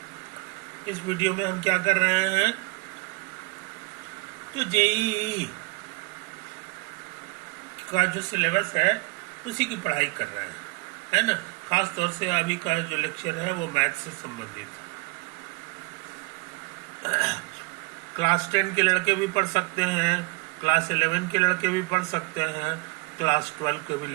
इस वीडियो में हम क्या कर रहे हैं, तो जेईई का जो सिलेबस है उसी की पढ़ाई कर रहे हैं, है ना। खास तौर से अभी का जो लेक्चर है वो मैथ से संबंधित है। क्लास 10 के लड़के भी पढ़ सकते हैं, क्लास 11 के लड़के भी पढ़ सकते हैं, क्लास 12 के भी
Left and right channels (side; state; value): left; quieter; 26.5 dB